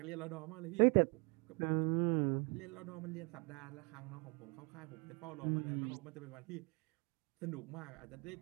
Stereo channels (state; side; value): quieter; left; 33.0 dB